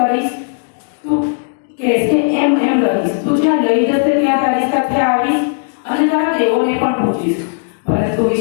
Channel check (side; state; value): right; silent; digital silence